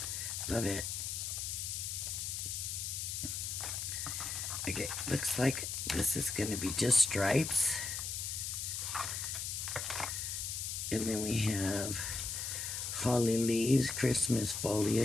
love it. Okay, looks like this is going to be just stripes. And then we have holly leaves, Christmas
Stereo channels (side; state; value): left; noise; hiss, 3 dB below the sound